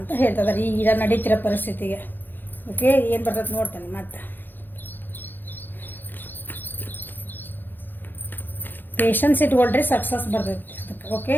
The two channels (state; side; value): late; right; 0.091 ms